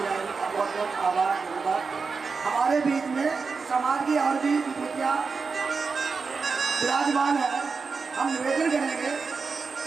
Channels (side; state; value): left; quieter; 4.8 dB